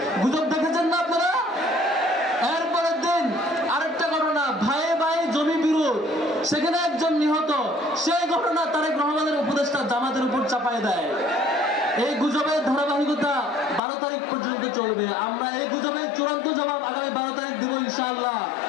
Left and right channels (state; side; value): drops out; right; at 13.8 s